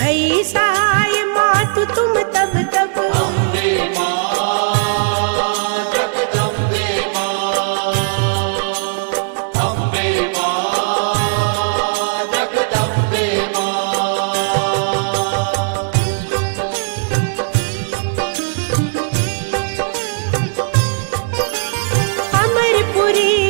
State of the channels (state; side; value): silent; left; digital silence